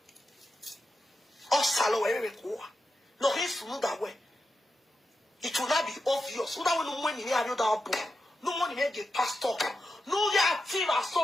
osalo we re ko no his mu that way. It will not be obvious. So that when no money near you that book, no money near the pastor, no ya team or so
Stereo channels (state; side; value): normal; both; correlation 0.88